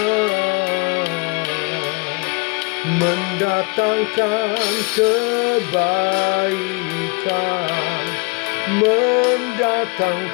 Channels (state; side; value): quieter; right; 31.0 dB